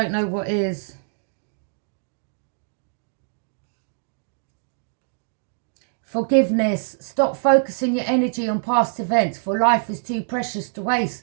know what is. Forgiveness. Stop focusing your energy on past events, for life is too precious to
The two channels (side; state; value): left; silent; digital silence